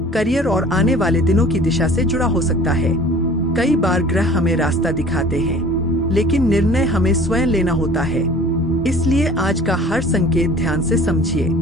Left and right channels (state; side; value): normal; both; correlation 0.46